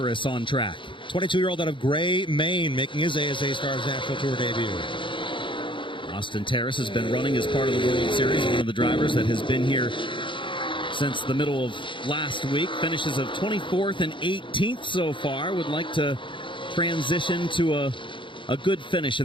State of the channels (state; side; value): late; right; 0.24 ms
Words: on track. 22-year-old out of Gray, Maine, making his ASA Stars National Tour debut. Austin Terrace has been running as part of the World Series, one of the drivers that has been here since the middle of last week. Finishes of 24th and 18th so far. Would like to transition to a good finish